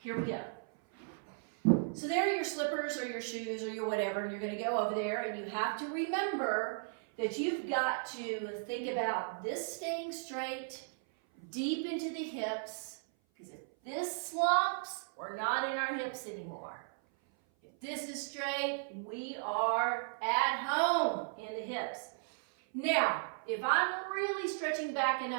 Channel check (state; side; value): silent; left; 54 dB below the other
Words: we go. So there are your slippers or your shoes or your whatever, and you're going to go over there, and you have to remember that you've got to think about this staying straight, deep into the hips, because if this slumps, we're not in our hips anymore. If this is straight, we are at home in the hips. Now, if I'm really stretching back and